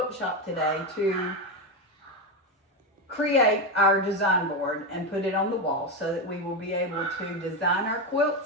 shop today to create our design board and put it on the wall so that we will be able to design our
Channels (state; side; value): normal; both; correlation 0.12